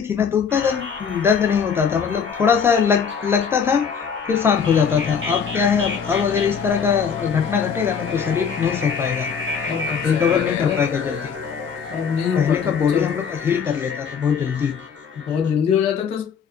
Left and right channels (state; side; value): quieter; right; 6.6 dB